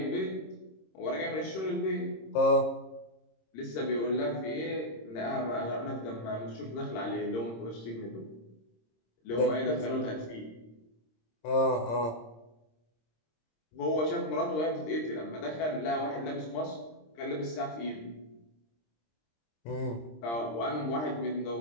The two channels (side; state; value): right; late; 26 ms